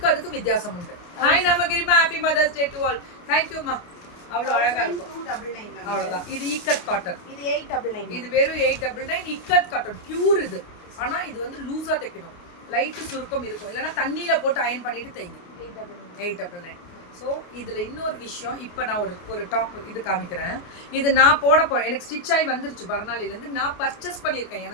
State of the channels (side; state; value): right; late; 29 ms